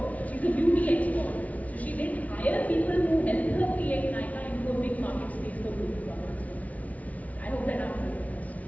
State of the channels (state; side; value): late; right; 0.069 ms